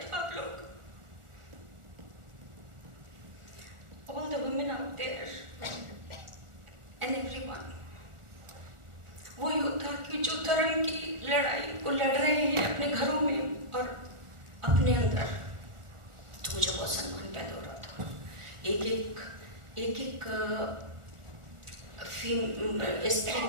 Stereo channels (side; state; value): left; late; 1.4 ms